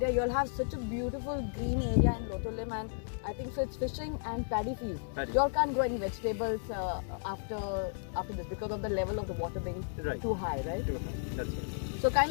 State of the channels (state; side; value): silent; right; digital silence